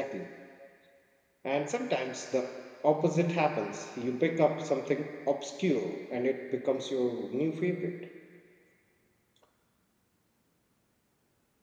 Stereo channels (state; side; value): identical; both; correlation 1.00